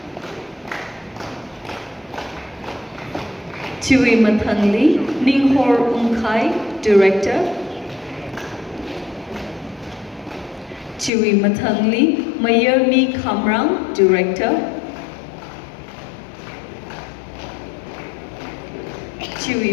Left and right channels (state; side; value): drops out; right; at 11.1 s